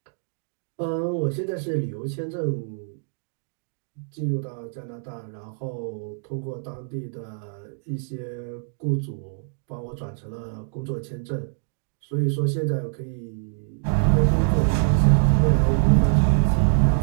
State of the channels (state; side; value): silent; left; digital silence